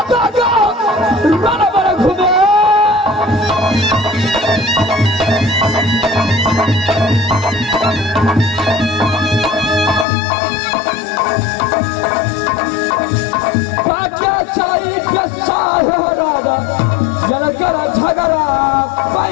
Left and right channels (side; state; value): right; drops out; at 10.1 s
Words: दादा राना बड़ा घूमे क्या चाहिए पैसा है राजा जनकर झगड़ा